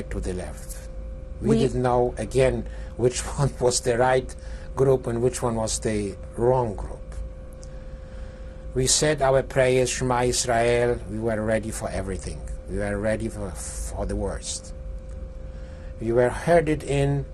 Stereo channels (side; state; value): both; identical; correlation 1.00